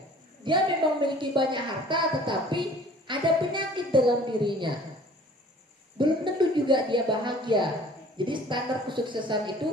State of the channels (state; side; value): normal; both; correlation 0.50